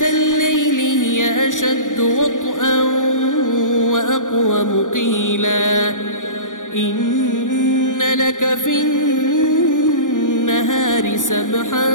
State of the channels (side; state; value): right; late; 0.87 ms